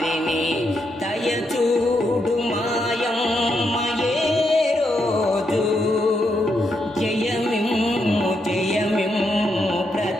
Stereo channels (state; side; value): normal; both; correlation 0.81